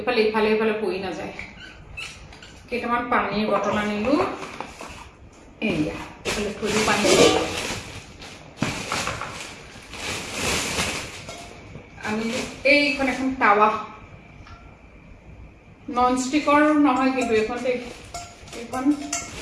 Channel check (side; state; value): both; identical; correlation 1.00